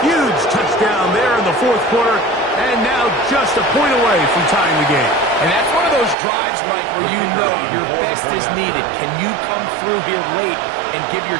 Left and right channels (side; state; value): left; drops out; at 6.2 s